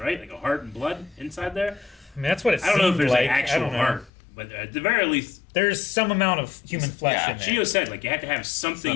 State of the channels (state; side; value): drops out; right; at 4.1 s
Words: Like a heart and blood inside there. I mean, that's what it I don't know if seemed there's like. an I actual don't know. heart, but at the very least, There's some amount of human flesh yeah, in there. Chiyo said like you had to have